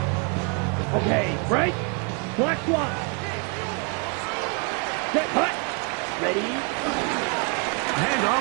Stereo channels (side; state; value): left; quieter; 34.1 dB